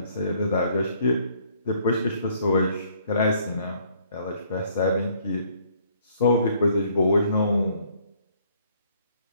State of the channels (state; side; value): inverted; both; correlation -0.63